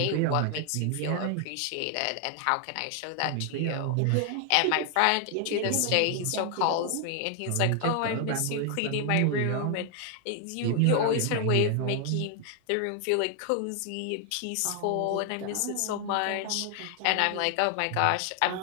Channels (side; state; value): both; different; correlation 0.00